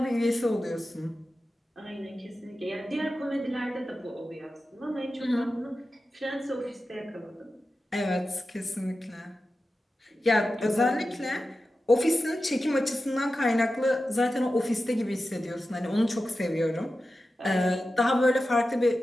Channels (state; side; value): normal; both; correlation 0.93